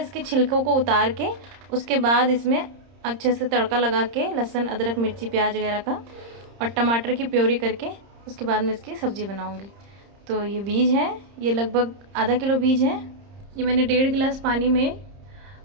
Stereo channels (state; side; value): late; left; 30 ms